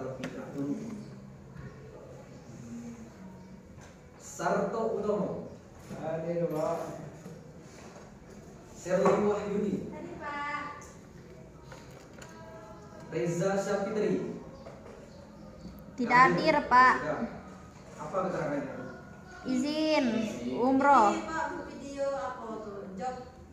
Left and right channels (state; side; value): identical; both; correlation 1.00